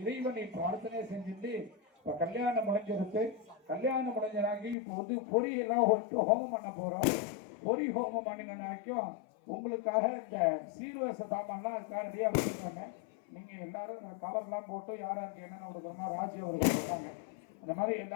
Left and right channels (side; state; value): right; drops out; at 4.8 s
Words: இறைவனை பிரார்த்தனை செஞ்சுட்டு இப்ப கல்யாணம் முடிஞ்சிருக்கு. கல்யாணம் முடிஞ்சனாக்கி இப்போ வந்து பொறி எல்லாம் ஹோமம் பண்ண போறோம். பொறி ஹோமம் பண்ணினாக்கும் உங்களுக்காக இந்த சீர்வரிசை சாமான்லாம் அதுக்காக ரெடியா வச்சுருக்காங்க. நீங்க எல்லாரும் கவர்லாம் போட்டு யாராருக்கு என்னென்ன கொடுக்கணும்னா ராஜி அவர்கள் கொடுத்தாங்க. அந்த மாதிரி